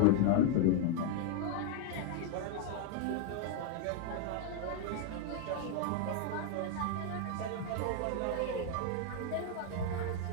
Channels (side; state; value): both; different; correlation 0.00